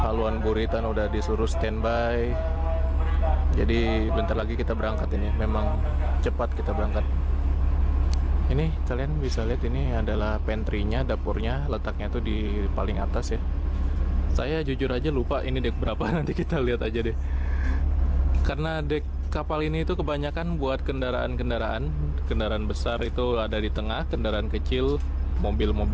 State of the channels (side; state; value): both; identical; correlation 1.00